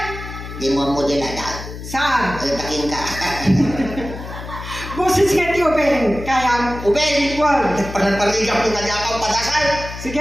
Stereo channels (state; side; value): noise; left; hum, 10 dB below the sound